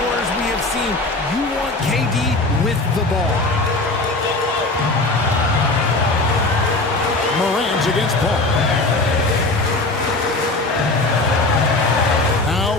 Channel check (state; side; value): quieter; right; 3.1 dB